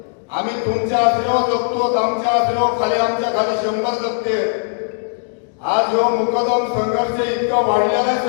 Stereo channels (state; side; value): silent; right; digital silence